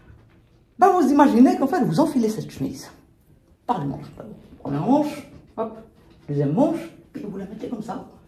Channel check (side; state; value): both; identical; correlation 1.00